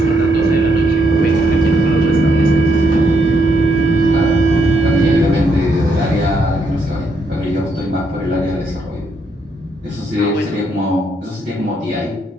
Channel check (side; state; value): both; normal; correlation 0.75